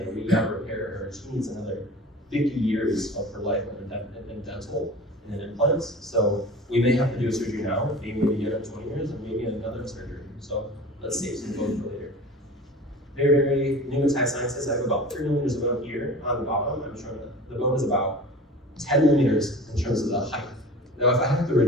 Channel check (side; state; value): both; normal; correlation 0.38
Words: we got to repair her. She needs another 50 years of her life in dental. and then implants. So we may have to do a surgery now, maybe again in 20 years, and maybe another surgery. So let's save some bone for later. Very, very pneumatized sciences. I have about 3 millimeters of bone here on the bottom. I'm showing that the bone is about 10 millimeters in terms of the height. Now, if I have to